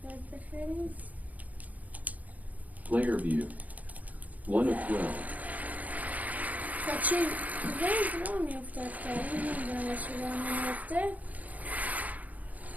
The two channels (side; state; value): left; late; 0.076 ms